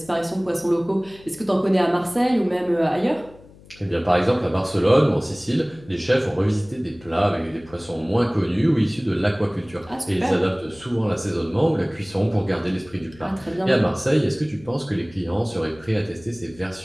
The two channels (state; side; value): noise; left; hum, 23 dB below the sound